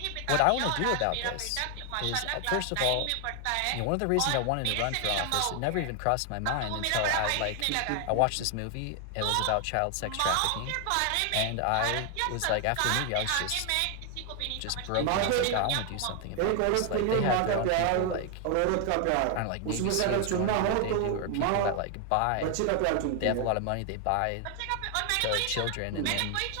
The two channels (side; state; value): both; different; correlation 0.00